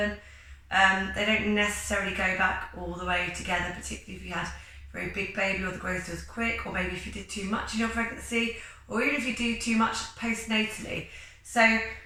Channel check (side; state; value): both; identical; correlation 1.00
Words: they don't necessarily go back all the way together, particularly if you had a very big baby or the growth was quick, or maybe if you did too much in your pregnancy, or even if you do too much postnatally. So